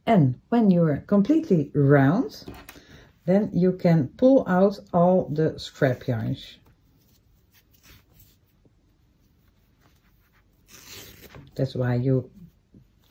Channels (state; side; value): identical; both; correlation 1.00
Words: And when you're completely round, then you can pull out all the scrap yarns. That's why you